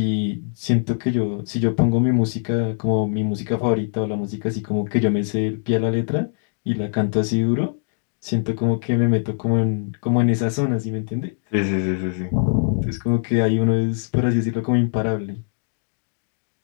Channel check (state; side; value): silent; right; digital silence